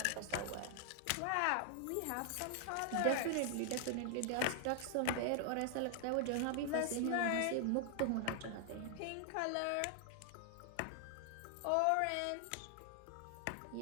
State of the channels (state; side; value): different; both; correlation 0.00